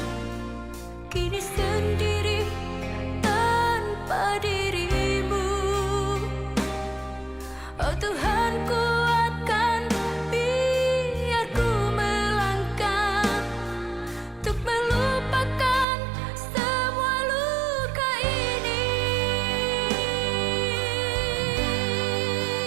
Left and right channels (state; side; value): drops out; left; at 15.9 s